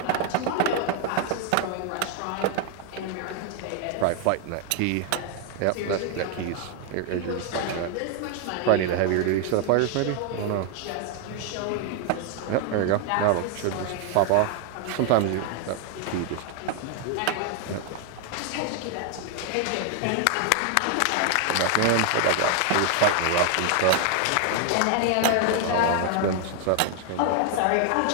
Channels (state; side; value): different; both; correlation 0.00